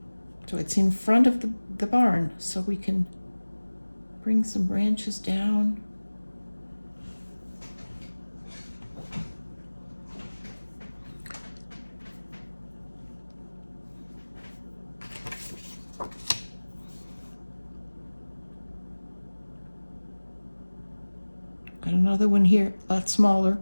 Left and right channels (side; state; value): both; inverted; correlation -1.00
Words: so it's in front of the barn, so we can bring some branches down. Got another one here, a lot smaller.